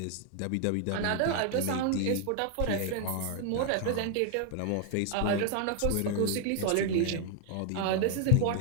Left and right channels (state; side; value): different; both; correlation 0.00